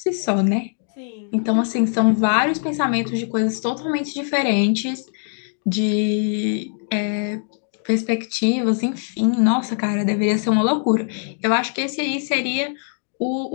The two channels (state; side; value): silent; right; 64 dB below the other